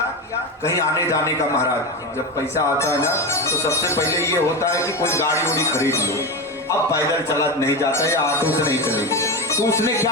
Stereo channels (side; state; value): both; normal; correlation 0.19